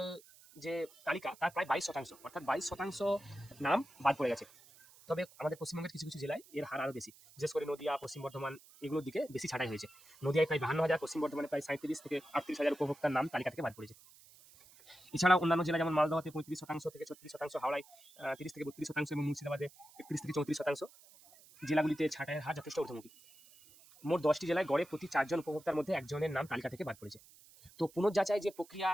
যে তালিকা তার প্রায় 22%, অর্থাৎ 22% নাম বাদ পড়ে গেছে। তবে আমাদের পশ্চিমবঙ্গের কিছু কিছু জেলায় এর হার আরও বেশি, বিশেষ করে নদিয়া, পশ্চিম বর্ধমান এগুলোর দিকে বেশি ছাঁটাই হয়েছে। নদিয়ায় প্রায় 52,000, পশ্চিম বর্ধমানে প্রায় 37 থেকে 38,000 উপভোক্তার নাম তালিকা থেকে বাদ পড়েছে। এছাড়াও অন্যান্য জেলা যেমন মালদহতে 35% থেকে 36%, হাওড়ায় 30 থেকে 32% এবং মুর্শিদাবাদে 31 থেকে 34% জেলাগুলিতে ছাঁটাইয়ের হার যথেষ্ট ঊর্ধ্বমুখী। মোট 10টি জেলায় গড়ে প্রতি 4 জন উপভোক্তার মধ্যে একজনের নাম তালিকা থেকে বাদ পড়েছে। তো পুনর্যাচাই যে প্রক্রিয়া,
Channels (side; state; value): right; noise; hiss, 24 dB below the sound